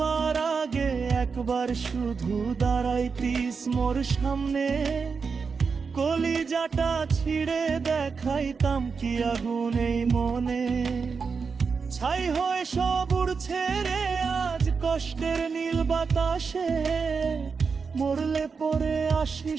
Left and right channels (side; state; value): left; quieter; 5.3 dB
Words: আগে একবার শুধু দাঁড়াইতিস মোর সামনে, কলিজাটা ছিঁড়ে দেখাইতাম কি আগুন এই মনে। ছাই হয়ে সব উড়ছে রে আজ কষ্টের নীল বাতাসে, মরলে পরে